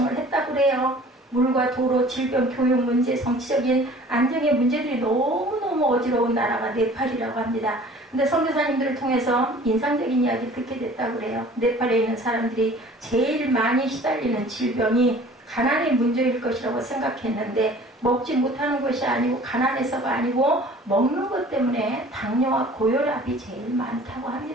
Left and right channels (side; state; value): both; normal; correlation 0.48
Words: 했다고 그래요. 물과 도로, 질병, 교육 문제, 정치적인 안정의 문제들이 너무너무 어지러운 나라가 네팔이라고 합니다. 근데 선교사님들을 통해서 인상적인 이야기 듣게 됐다고 그래요. 네팔에 있는 사람들이 제일 많이 시달리는 질병이 가난의 문제일 것이라고 생각했는데 먹지 못하는 것이 아니고 가난해서가 아니고 먹는 것 때문에 당뇨와 고혈압이 제일 많다고